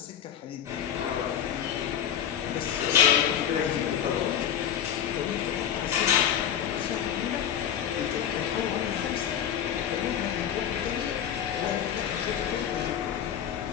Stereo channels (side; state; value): right; quieter; 9.4 dB